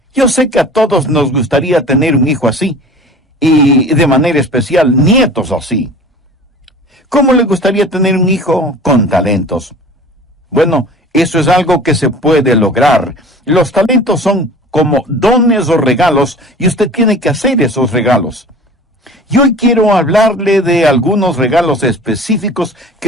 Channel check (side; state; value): both; normal; correlation 0.42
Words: Yo sé que a todos nos gustaría tener un hijo así, y de manera especial nietos así. ¿Cómo le gustaría tener un hijo con talentos? Bueno, eso es algo que se puede lograr. Los talentos son como dones o regalos, y usted tiene que hacer esos regalos. Y hoy quiero hablarle de algunos regalos específicos